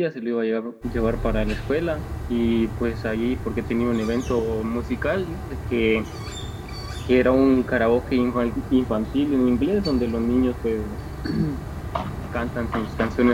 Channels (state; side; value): identical; both; correlation 1.00